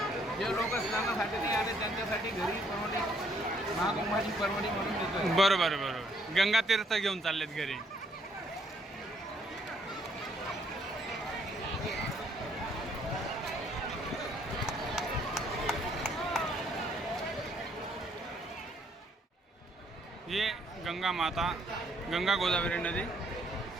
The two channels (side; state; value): both; normal; correlation 0.67